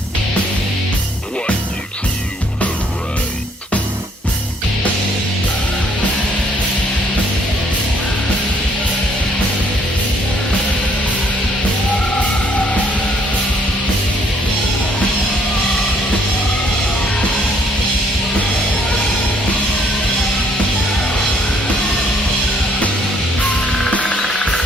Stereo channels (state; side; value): normal; both; correlation 0.65